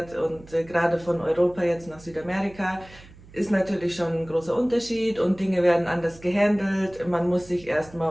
und gerade von Europa jetzt nach Südamerika, ist natürlich schon ein großer Unterschied und Dinge werden anders gehandelt. Man muss sich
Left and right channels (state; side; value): noise; right; hum, 21 dB below the sound